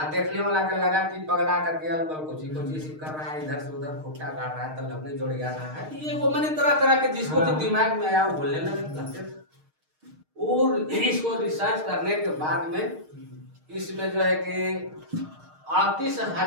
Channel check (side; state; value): left; late; 6.5 ms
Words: देखने वाला का लगा कि पगला करके अलबल कुछ कर रहा है, इधर से उधर खुट्टा काट रहा है, तो लकड़ी जोड़ जा रहा है। ये वो मैंने तरह तरह के जिसको जो दिमाग में आया वो बोलने लगे। और इसको रिसर्च करने के बाद में इसमें जो है कि